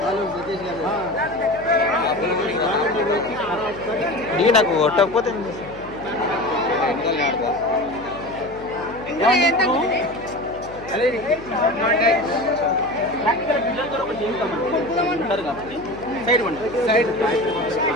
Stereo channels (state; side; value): noise; left; hum, 17 dB below the sound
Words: నీ నాకు కొట్టకపోతే సైడ్